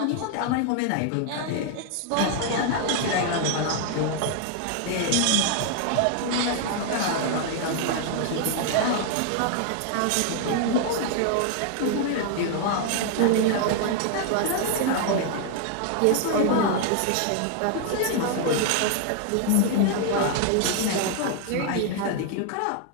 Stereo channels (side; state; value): both; different; correlation 0.00